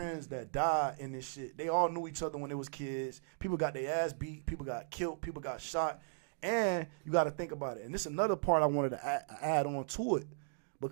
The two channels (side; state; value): left; silent; digital silence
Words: that died in this shit. They all knew each other when they was kids. People got their ass beat. People got killed. People got shot. And you got to think about it. And this is another part I wanted to add on to it